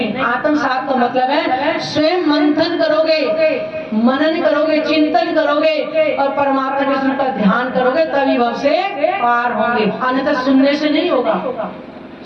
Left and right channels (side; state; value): both; identical; correlation 1.00